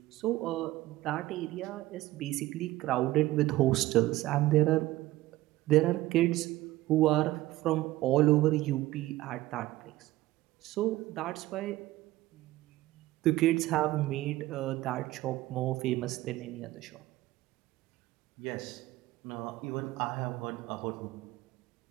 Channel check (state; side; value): quieter; left; 17.0 dB